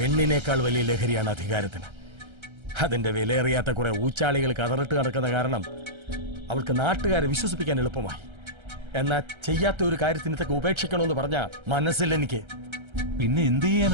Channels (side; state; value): left; late; 1.3 ms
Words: വലിയ ലഹരിയാണ് അധികാരത്തിന്. അതിന്റെ വിലയേറിയാത്ത കുറെ ഊച്ചാളികൾ കതറിട്ട് നടക്കുന്ന കാരണം അവൾക്ക് നാട്ടുകാരെ വിശ്വസിപ്പിക്കാൻ എളുപ്പമായി. എന്നാ ചെയ്യാത്ത ഒരു കാര്യത്തിന് ഇതൊക്കെ ഉപേക്ഷിക്കണമെന്ന് പറഞ്ഞ മനസ്സിൽ എനിക്ക്. പിന്നെ എന്ത്